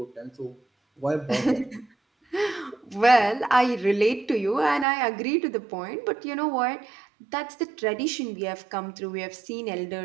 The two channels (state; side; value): drops out; left; at 4.9 s